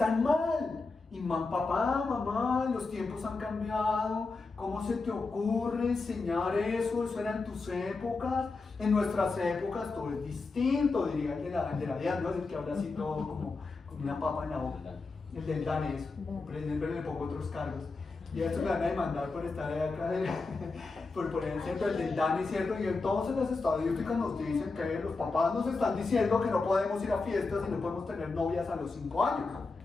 Y papá, mamá, los tiempos han cambiado. ¿Cómo se te ocurre enseñar eso? Eso era en tus épocas. En nuestras épocas todo es distinto, diría el de la DEAN, ¿no? Es el que habla así todo como una papa en la boca. El del danés, siempre le pongo otros cargos. Y a eso me van a demandar por estar acá, por poner el centro del DANE, ¿cierto? Y entonces las estadísticas nos dicen que los papás nos están diciendo que no podemos ir a fiestas y no podemos tener novias a los 5 años.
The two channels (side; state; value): right; quieter; 3.9 dB